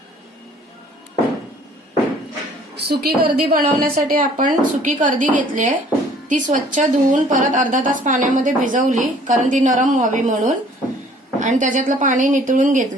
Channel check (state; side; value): normal; both; correlation 0.55